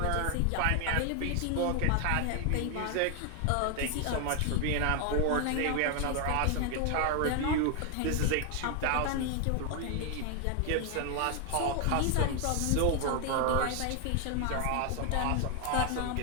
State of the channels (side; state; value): both; different; correlation 0.01